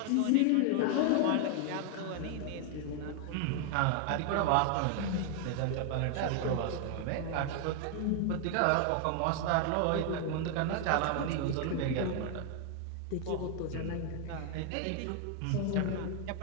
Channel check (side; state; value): both; different; correlation 0.00